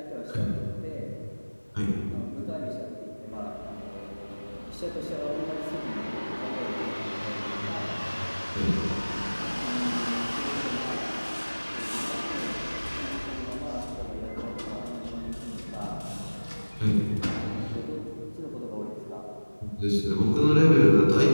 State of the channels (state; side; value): inverted; both; correlation -1.00